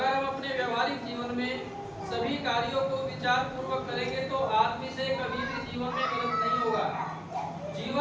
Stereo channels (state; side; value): identical; both; correlation 1.00